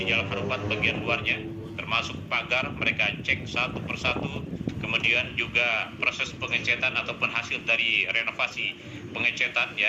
Harupat, bagian luarnya, termasuk pagar. Mereka cek satu persatu. Kemudian juga proses pengecetan ataupun hasil dari renovasi pengecetan,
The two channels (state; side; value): identical; both; correlation 1.00